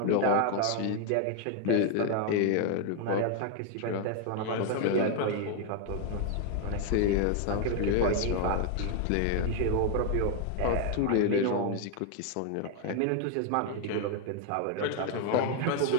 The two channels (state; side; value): different; both; correlation 0.01